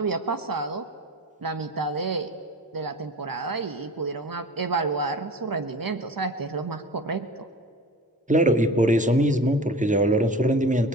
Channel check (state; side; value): normal; both; correlation 0.37